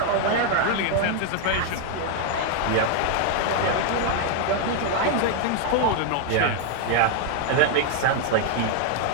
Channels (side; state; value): both; different; correlation 0.00